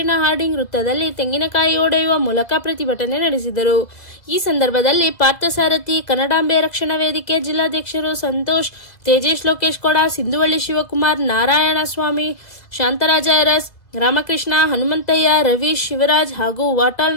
ಹಾರ್ಡಿಂಗ್ ವೃತ್ತದಲ್ಲಿ ತೆಂಗಿನಕಾಯಿ ಒಡೆಯುವ ಮೂಲಕ ಪ್ರತಿಭಟನೆ ನಡೆಸಿದರು. ಈ ಸಂದರ್ಭದಲ್ಲಿ ಪಾರ್ಥಸಾರಥಿ, ಕನ್ನಡಾಂಬೆ ರಕ್ಷಣಾ ವೇದಿಕೆ ಜಿಲ್ಲಾಧ್ಯಕ್ಷರು ಸಂತೋಷ್, ತೇಜೇಶ್, ಲೋಕೇಶ್ ಕೊಡ, ಸಿಂಧುವಳ್ಳಿ ಶಿವಕುಮಾರ್, ನಾರಾಯಣ ಸ್ವಾಮಿ, ಶಾಂತರಾಜ ಅರಸ್, ರಾಮಕೃಷ್ಣ, ಹನುಮಂತಯ್ಯ, ರವೀಶ್, ಶಿವರಾಜ್ ಹಾಗೂ ವಾಟಾಳ್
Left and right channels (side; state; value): right; late; 2.0 ms